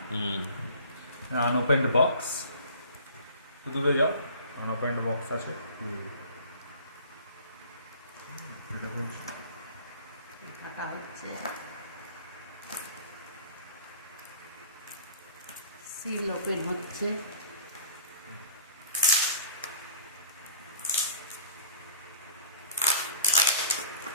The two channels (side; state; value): both; inverted; correlation -0.48